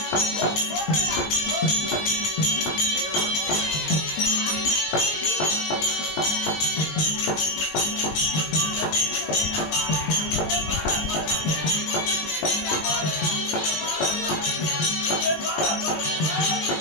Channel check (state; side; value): late; right; 20 ms